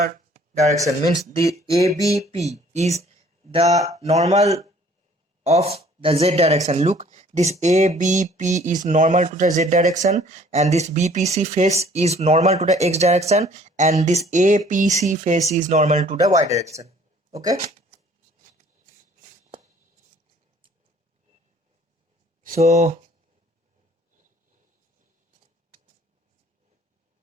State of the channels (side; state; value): both; normal; correlation 0.56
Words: direction. Means the ABP is the normal of the Z direction. Look, this ABP is normal to the Z direction, and this BPC face is normal to the X direction, and this APC face is normal to the Y direction. Okay, So